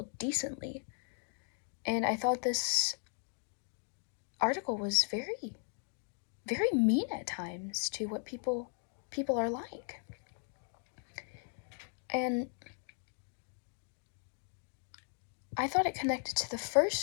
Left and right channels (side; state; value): right; silent; 53 dB below the other